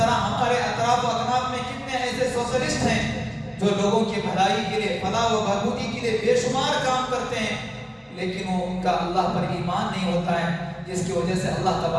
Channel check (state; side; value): identical; both; correlation 1.00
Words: ہمارے اطراف و اکناف میں کتنے ایسے سوشلسٹ ہیں جو لوگوں کی بھلائی کے لیے، فلاح و بہبودی کے لیے بے شمار کام کرتے ہیں، لیکن وہ ان کا اللہ پر ایمان نہیں ہوتا ہے، جس کی وجہ سے اللہ